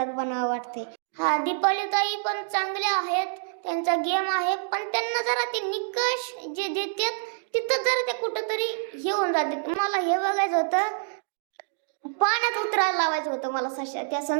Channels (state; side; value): silent; left; digital silence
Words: बनावं वाटते. हा दीपाली ताई पण चांगल्या आहेत, त्यांचा गेम आहे, पण त्यांना जरा ते निकष जे देतात तिथं जरा ते कुठंतरी हे होऊन जाते. मला हे बघायचं होतं, पाण्यात उतरायला लावायचं होतं मला त्या